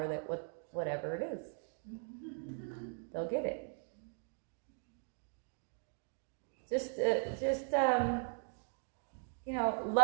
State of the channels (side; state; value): left; silent; 52 dB below the other